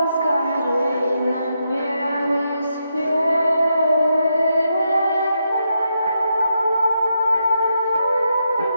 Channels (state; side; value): inverted; both; correlation -0.82